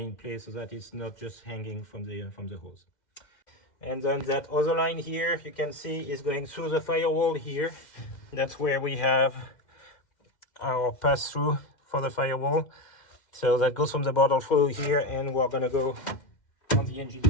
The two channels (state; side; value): late; right; 2.1 ms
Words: place so that it's not just hanging from the hose. And then that other line here, you can see, is going through the firewall here. That's where we have our pass-through for the firewall. So that goes from the bottle through here, and we're gonna go on the engine